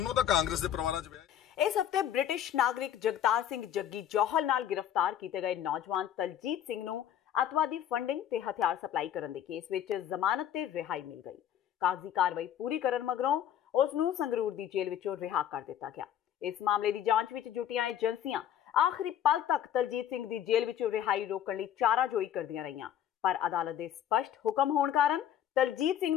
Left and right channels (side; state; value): right; quieter; 10.3 dB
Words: ਤਾਂ ਕਾਂਗਰਸ ਦੇ ਪਰਿਵਾਰਾਂ 'ਚ ਵਿਆਹੇ। ਇਸ ਹਫਤੇ ਬ੍ਰਿਟਿਸ਼ ਨਾਗਰਿਕ ਜਗਤਾਰ ਸਿੰਘ ਜੱਗੀ ਜੌਹਲ ਨਾਲ ਗ੍ਰਿਫਤਾਰ ਕੀਤੇ ਗਏ ਨੌਜਵਾਨ ਤਲਜੀਤ ਸਿੰਘ ਨੂੰ ਅੱਤਵਾਦੀ ਫੰਡਿੰਗ ਤੇ ਹਥਿਆਰ ਸਪਲਾਈ ਕਰਨ ਦੇ ਕੇਸ ਵਿੱਚ ਜ਼ਮਾਨਤ ਤੇ ਰਿਹਾਈ ਮਿਲ ਗਈ। ਕਾਗਜ਼ੀ ਕਾਰਵਾਈ ਪੂਰੀ ਕਰਨ ਮਗਰੋਂ ਉਸ ਨੂੰ ਸੰਗਰੂਰ ਦੀ ਜੇਲ੍ਹ ਵਿੱਚੋਂ ਰਿਹਾ ਕਰ ਦਿੱਤਾ ਗਿਆ। ਇਸ ਮਾਮਲੇ ਦੀ ਜਾਂਚ ਵਿੱਚ ਜੁਟੀਆਂ ਏਜੰਸੀਆਂ ਆਖਰੀ ਪਲ ਤੱਕ ਤਲਜੀਤ ਸਿੰਘ ਦੀ ਜੇਲ੍ਹ ਵਿੱਚੋਂ ਰਿਹਾਈ ਰੋਕਣ ਲਈ ਚਾਰਾਜੋਈ ਕਰਦੀਆਂ ਰਹੀਆਂ, ਪਰ ਅਦਾਲਤ ਦੇ ਸਪਸ਼ਟ ਹੁਕਮ ਹੋਣ ਕਾਰਨ ਤਲਜੀਤ ਸਿੰਘ